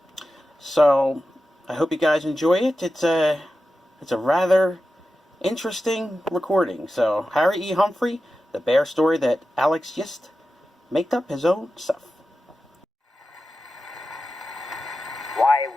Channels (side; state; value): both; normal; correlation 0.92